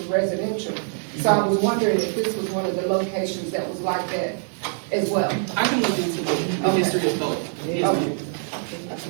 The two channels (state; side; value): silent; left; digital silence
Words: residential. So I was wondering if this was one of the locations that was like that as well. I can look into the history of both. Okay.